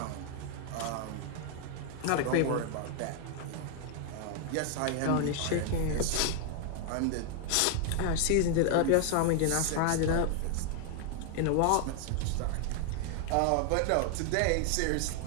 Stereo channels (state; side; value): different; both; correlation 0.00